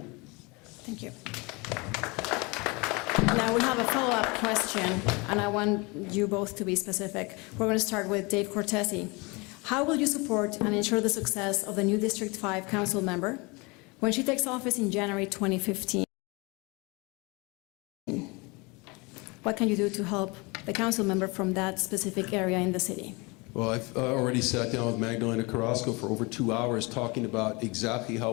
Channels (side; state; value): right; quieter; 27.1 dB